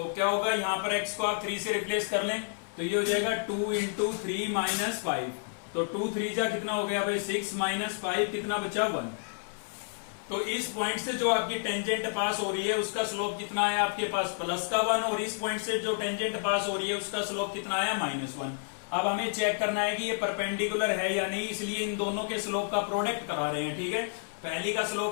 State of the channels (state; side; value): silent; right; 58 dB below the other